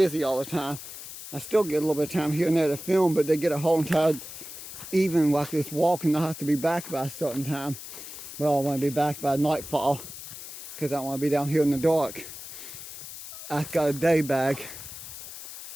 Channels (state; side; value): noise; left; hiss, 12 dB below the sound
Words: all the time. I still get a little bit of time here and there to film, but they get a whole entire evening like this walking. I have to be back by a certain time. Well, I want to be back by nightfall because I don't want to be down here in the dark. I've got a day bag.